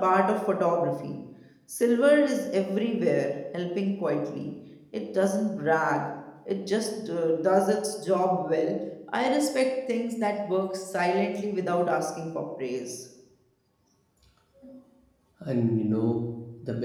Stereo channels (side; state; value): both; identical; correlation 1.00